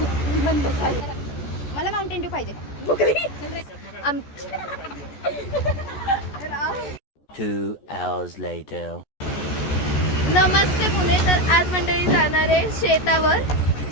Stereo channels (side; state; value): right; late; 14 ms